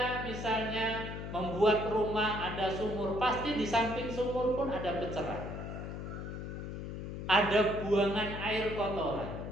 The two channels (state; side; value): noise; left; hum, 7 dB below the sound